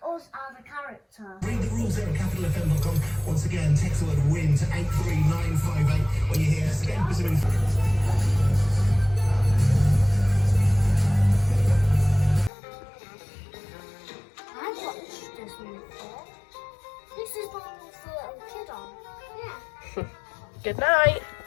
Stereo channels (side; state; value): right; drops out; at 12.5 s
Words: us as a character. Read the rules there at capitalfm.com. Once again, text the word WIN to 83958 when you hear us again. I've watched this one before. This is the one with the little kid on. Yeah. Good night.